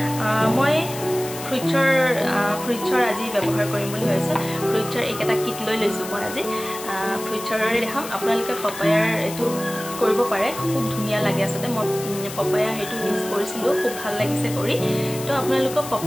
মই ফ্ৰুইটছৰ আজি ব্যৱহাৰ কৰিম বুলি ভাবিছোঁ ফ্ৰুইটছৰ এইকেইটা কিট লৈ লৈছোঁ মই আজি ফ্ৰুইটছৰে দেখাম আপোনালোকে পপায়াৰ এইটো কৰিব পাৰে খুব ধুনীয়া লাগে আচলতে মই পপায়া সেইটো ইউজ কৰিছিলোঁ খুব ভাল লাগিছে কৰি তো আপোনালোকক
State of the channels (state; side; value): noise; left; hiss, 11 dB below the sound